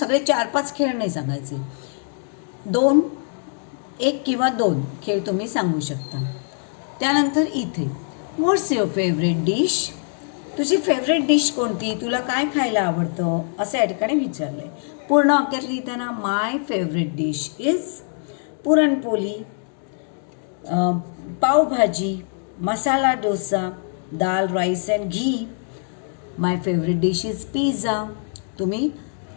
4-5 खेळ नाही सांगायचे. 1 किंवा 2 खेळ तुम्ही सांगू शकता. त्यानंतर इथे व्हॉट्स युअर फेवरेट डिश? तुझी फेवरेट डिश कोणती? तुला काय खायला आवडतं? असं या ठिकाणी विचारलं आहे. पूर्ण वाक्यात लिहिताना my favourite dish is puranpoli, pavbhaji, masala dosa, dal rice and ghee. My favourite dish is pizza. तुम्ही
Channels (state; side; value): silent; right; 62 dB below the other